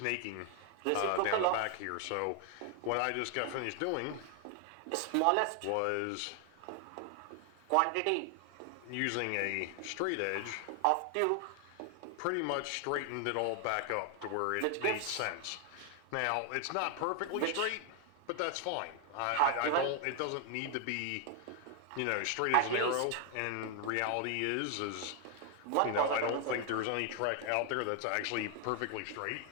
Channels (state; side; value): different; both; correlation 0.00